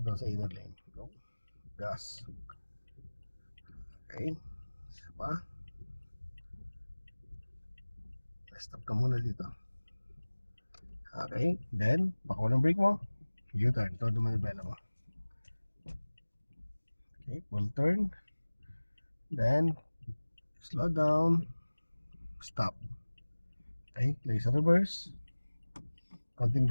doon sa inner lane. Go. Gas. Okay. Isa pa. Stop ka muna dito. Okay. Then, baka ng brake mo. U-turn. Todo manibela mo. Okay. Full turn. Then, slow down. Stop. Okay, play sa reverse. Konting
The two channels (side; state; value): both; inverted; correlation -1.00